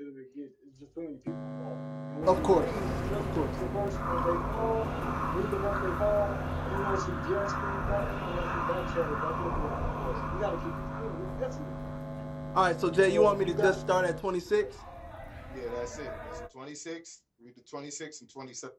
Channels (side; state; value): both; identical; correlation 1.00